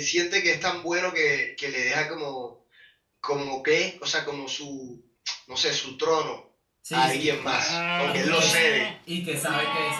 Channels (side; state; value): both; identical; correlation 1.00